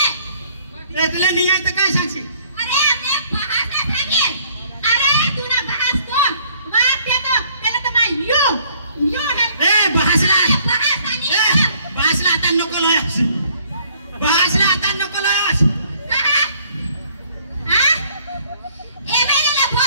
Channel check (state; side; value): inverted; both; correlation -0.61